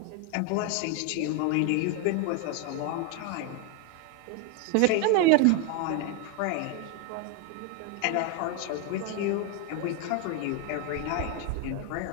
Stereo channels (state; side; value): different; both; correlation 0.01